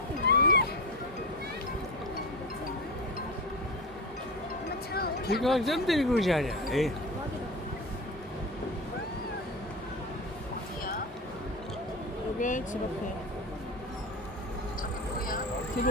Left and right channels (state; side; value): normal; both; correlation 0.24